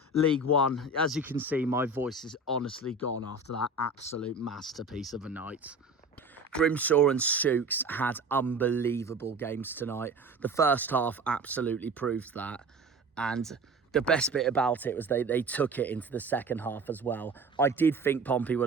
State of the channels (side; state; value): left; quieter; 3.0 dB